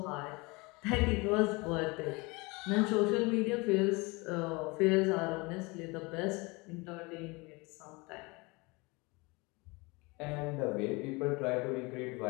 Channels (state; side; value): quieter; right; 26.0 dB